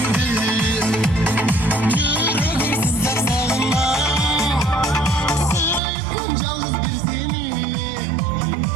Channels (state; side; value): drops out; left; at 5.8 s